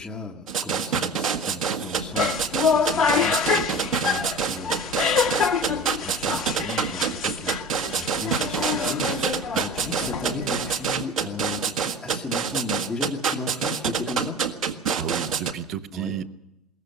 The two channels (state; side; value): normal; both; correlation 0.36